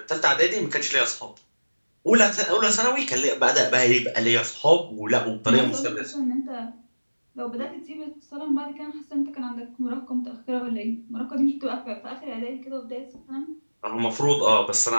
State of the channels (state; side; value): inverted; both; correlation -1.00